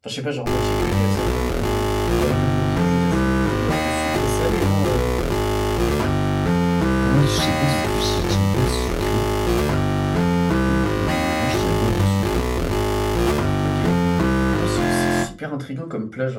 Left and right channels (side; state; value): both; identical; correlation 1.00